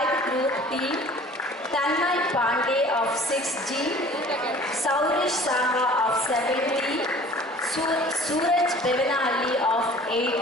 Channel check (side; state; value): both; normal; correlation 0.48